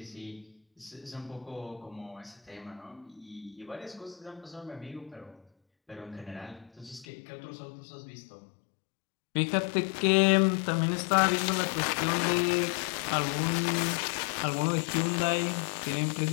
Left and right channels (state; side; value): drops out; right; at 7.1 s